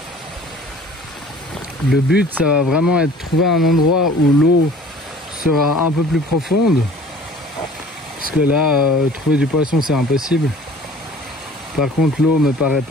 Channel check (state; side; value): normal; both; correlation 0.49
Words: Le but ça va vraiment être de trouver un endroit où l'eau sera un peu plus profonde. Parce que là trouver du poisson c'est impossible. Par contre l'eau me paraît